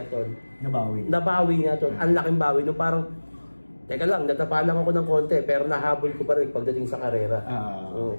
tol. Nabawi niya tol. Ang laking bawi. No, parang, teka lang, natapa lang ako ng konti. Pero nahabol ko pa rin pagdating sa karera.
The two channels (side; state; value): both; inverted; correlation -1.00